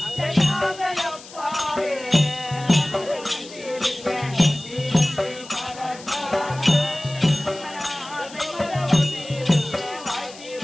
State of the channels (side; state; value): left; noise; hiss, 18 dB below the sound